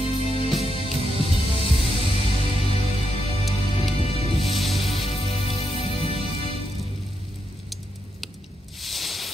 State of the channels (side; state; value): both; normal; correlation 0.83